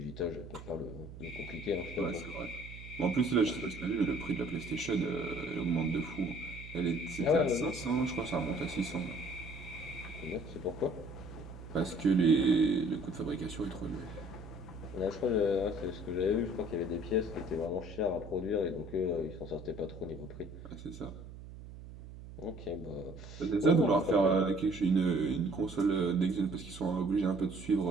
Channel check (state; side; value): noise; right; hum, 14 dB below the sound